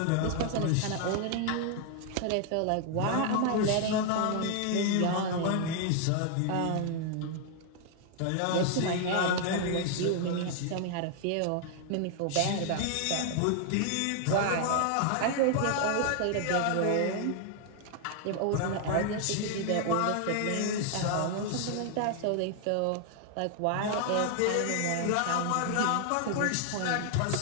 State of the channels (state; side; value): different; both; correlation 0.00